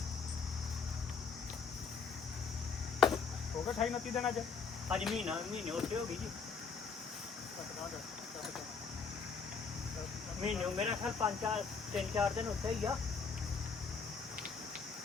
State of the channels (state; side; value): quieter; right; 5.5 dB